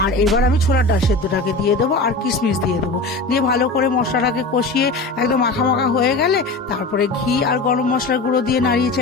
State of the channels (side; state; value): right; quieter; 3.2 dB